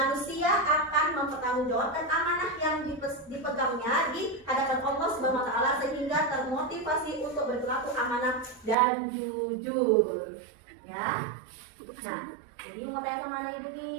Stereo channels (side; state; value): left; drops out; at 8.8 s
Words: akan mempertanggungjawabkan amanah yang dipegangnya di hadapan Allah Subhanahu wa taala sehingga termotivasi untuk berperilaku amanah dan jujur. Ya. Nah, jadi mau tanya sama anak Ibu